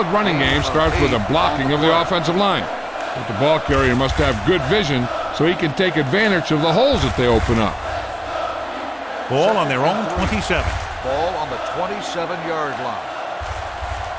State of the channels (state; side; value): identical; both; correlation 1.00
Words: running game starts with a blocking of the offensive line. But the ball carrier must have good vision so he can take advantage of the holes that they open up. Ball on their own 27. Ball on the 27-yard line.